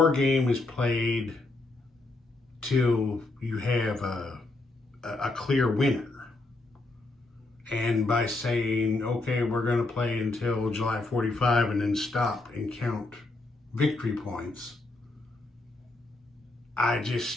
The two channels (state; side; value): quieter; right; 3.0 dB